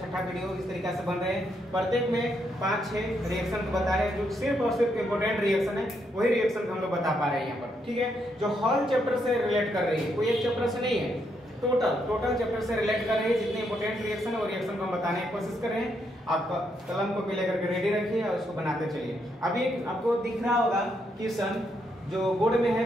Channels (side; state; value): both; normal; correlation 0.77